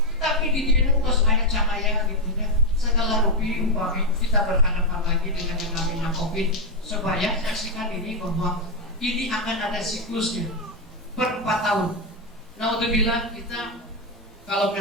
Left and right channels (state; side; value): normal; both; correlation 0.03